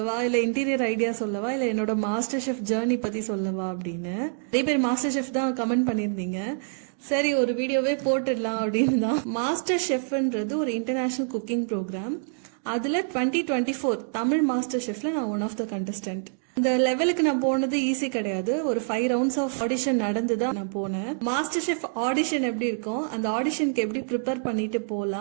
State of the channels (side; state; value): left; silent; digital silence